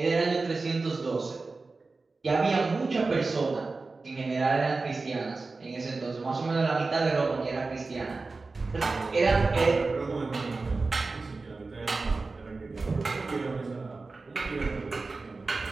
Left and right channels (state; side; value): quieter; left; 3.8 dB